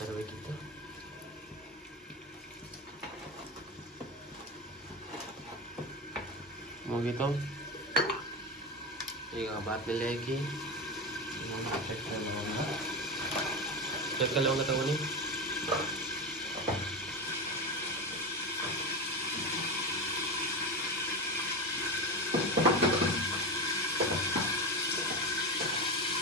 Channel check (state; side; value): normal; both; correlation 0.19